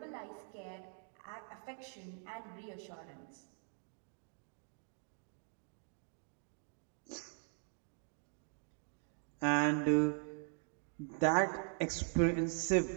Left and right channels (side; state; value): left; silent; 50 dB below the other